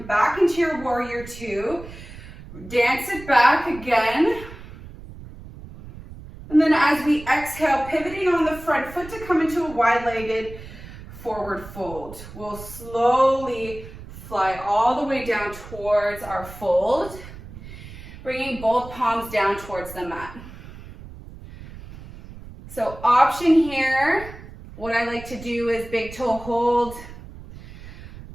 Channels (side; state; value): right; noise; rumble, 15 dB below the sound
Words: back into your warrior two, dance it back again. And then as we exhale, pivoting on the front foot to come into a wide-legged forward fold. We'll slowly fly all the way down towards our fold, bringing both palms down towards the mat. So option here, what I like to do is big toe hold,